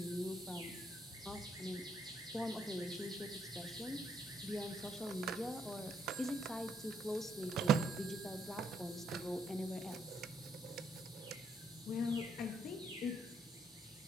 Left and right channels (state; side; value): normal; both; correlation 0.72